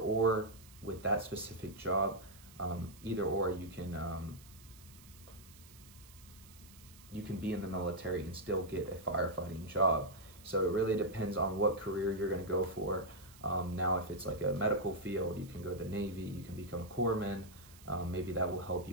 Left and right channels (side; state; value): right; noise; hiss, 22 dB below the sound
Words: with that specific job, either or you can be in the military and still get a firefighting job. So it really depends on what career you're going to go for. Now, if it's like a medical field, you can go to the Navy, you can become a corpsman. Maybe that will help